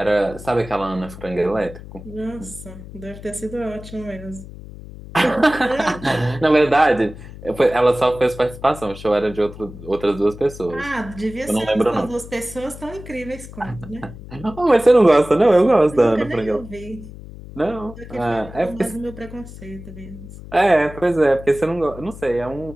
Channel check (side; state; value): left; noise; hum, 15 dB below the sound